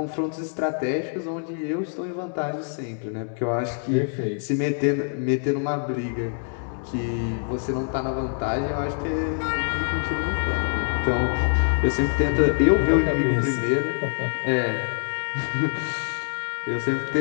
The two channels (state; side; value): silent; right; 62 dB below the other